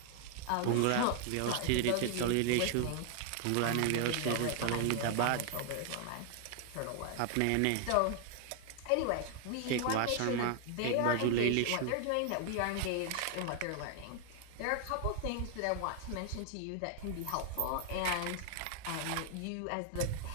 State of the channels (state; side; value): different; both; correlation 0.00